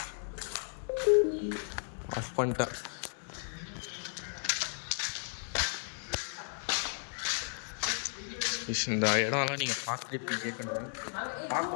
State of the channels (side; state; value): right; silent; 55 dB below the other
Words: ஆஃப் பண்ணிட்டேன். இந்த இடம்லாம் நீங்கள் பார்த்துட்டு கேட்கணும்.